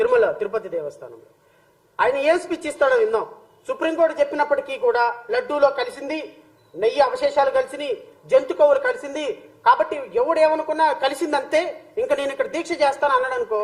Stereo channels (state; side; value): identical; both; correlation 1.00